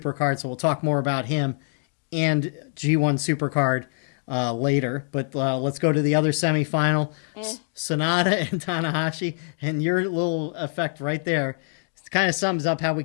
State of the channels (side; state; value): right; silent; digital silence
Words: So we'll talk more about him and G1 Supercard later. But let's go to the other semifinal. Sanada and Tanahashi. And your little effect right there kind of sums up how we